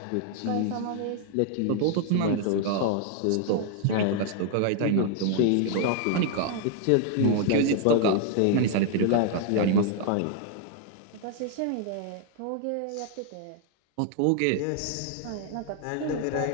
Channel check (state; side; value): different; both; correlation 0.00